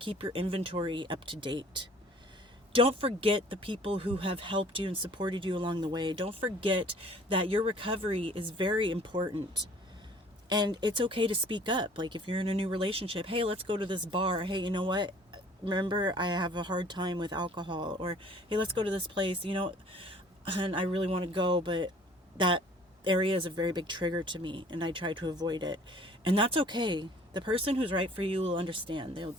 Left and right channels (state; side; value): normal; both; correlation 0.52